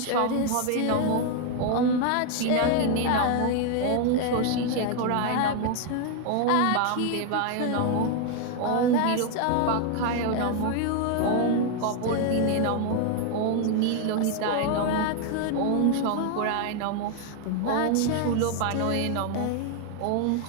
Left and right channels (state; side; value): different; both; correlation 0.01